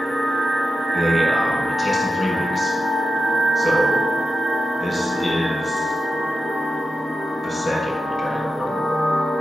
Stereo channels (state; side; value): normal; both; correlation 0.90